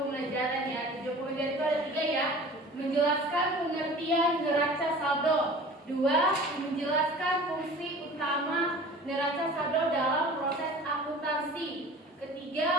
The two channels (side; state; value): both; normal; correlation 0.42